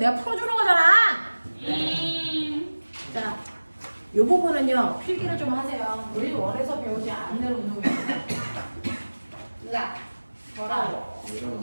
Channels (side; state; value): both; inverted; correlation -1.00